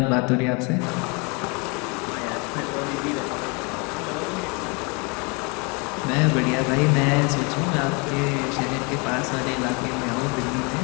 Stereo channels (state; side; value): quieter; right; 31.4 dB